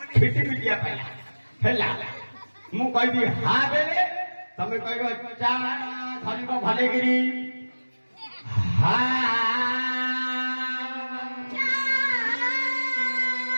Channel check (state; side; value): inverted; both; correlation -1.00